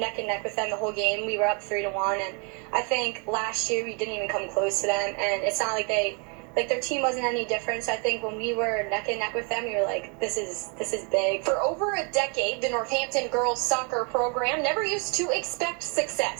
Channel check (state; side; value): quieter; left; 35.6 dB